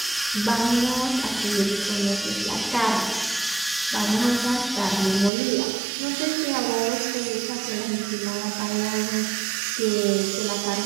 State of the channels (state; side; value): drops out; left; at 5.3 s